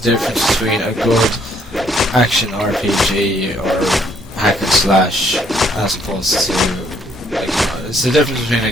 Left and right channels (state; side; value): normal; both; correlation 0.66